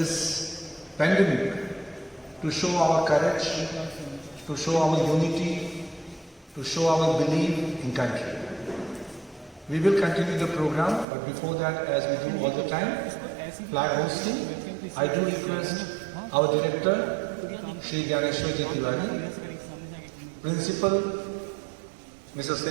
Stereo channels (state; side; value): drops out; left; at 11.1 s